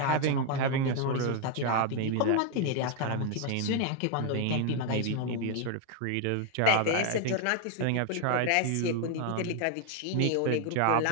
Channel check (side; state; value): both; different; correlation 0.01